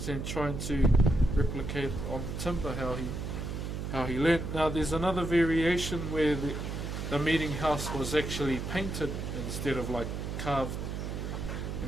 and trying to replicate on the timber how he learned. Now there's another variation where the meeting house was actually painted instead of like carved.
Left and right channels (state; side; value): noise; right; hum, 4 dB below the sound